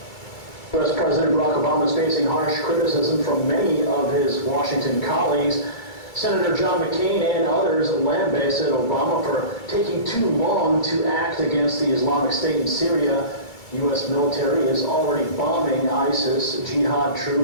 U.S. President Barack Obama is facing harsh criticism from many of his Washington colleagues. Senator John McCain and others lambasted Obama for taking too long to act against the Islamic State in Syria. U.S. military is already bombing ISIS jihad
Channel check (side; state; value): right; late; 2.3 ms